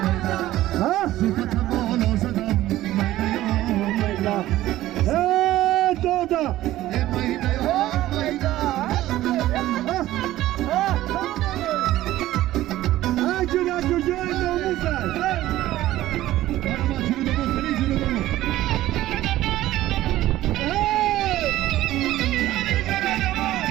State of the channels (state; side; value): quieter; left; 15.1 dB